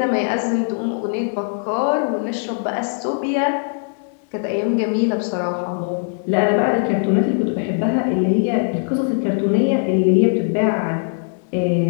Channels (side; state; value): right; silent; 61 dB below the other